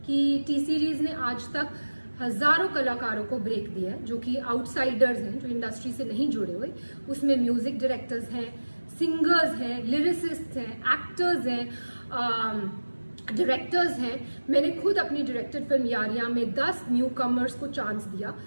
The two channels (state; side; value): inverted; both; correlation -1.00